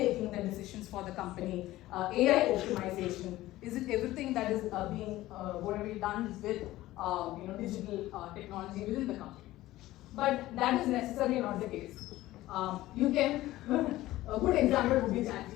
the decisions for the company, AI optimization? Is it everything that is being going to be done with digital technology within the company? But that is necessarily not the case. You can a good example would be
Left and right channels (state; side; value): quieter; right; 16.4 dB